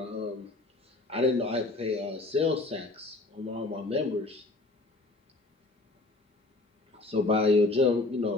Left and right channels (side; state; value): right; quieter; 3.1 dB